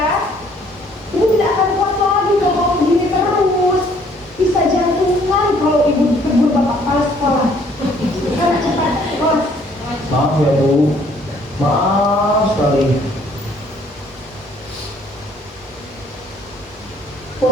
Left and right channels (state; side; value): normal; both; correlation 0.61